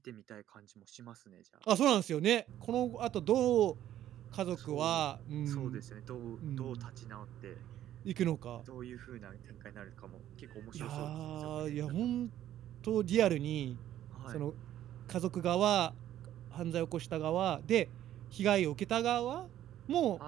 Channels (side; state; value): left; quieter; 12.1 dB